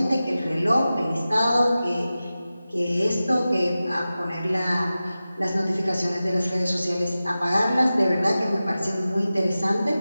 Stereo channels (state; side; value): inverted; both; correlation -0.95